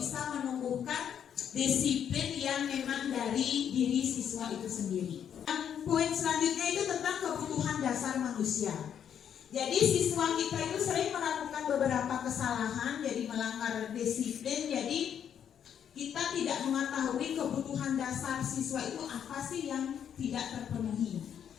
menumbuhkan disiplin yang memang dari diri siswa itu sendiri. Poin selanjutnya itu tentang kebutuhan dasar manusia. Jadi siswa kita itu sering melakukan beberapa kesalahan, jadi melanggar disiplin. Jadi kita tidak mengetahui kebutuhan dasar siswa itu apa sih yang tidak terpenuhi.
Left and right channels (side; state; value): right; quieter; 8.8 dB